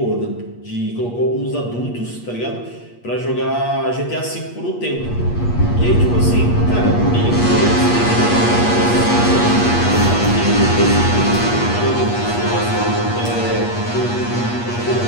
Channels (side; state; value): right; late; 8.4 ms